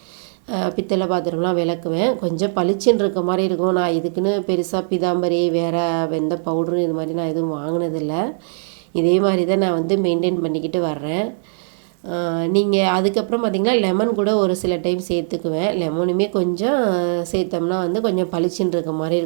பித்தளை பாத்திரம்லாம் விளக்குவேன். கொஞ்சம் பளிச்சுன்னு இருக்க மாதிரி இருக்கும். நான் இதுக்குன்னு பெருசாக பிதாம்பரி வேறு எந்த பவுட்ரு இது மாதிரி நான் எதுவும் வாங்கினதில்லை. இதே மாதிரி தான் நான் வந்து மெயின்டைன் பண்ணிக்கிட்டு வர்றேன். நீங்கள் அதுக்கப்புறம் பார்த்திங்கன்னா லெமன் கூட ஒரு சில டைம் சேர்த்துக்குவேன். லெமனுமே கொஞ்சம் சேர்த்தோம்னா வந்து கொஞ்சம் பளிச்சுன்னு இருக்க மாதிரி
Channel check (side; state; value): left; silent; 66 dB below the other